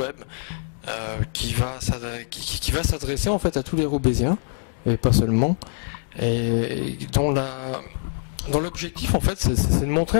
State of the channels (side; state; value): right; silent; digital silence